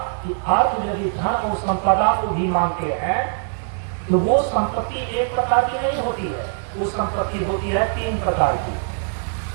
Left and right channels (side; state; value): left; silent; digital silence